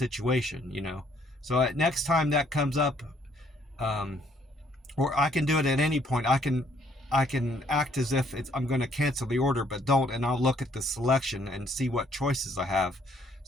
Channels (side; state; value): both; normal; correlation 0.66